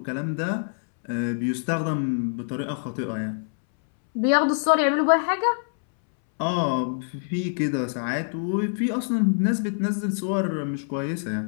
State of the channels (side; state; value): right; silent; 62 dB below the other